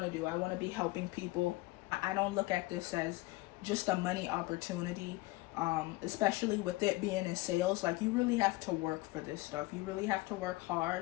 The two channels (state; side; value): quieter; right; 21.0 dB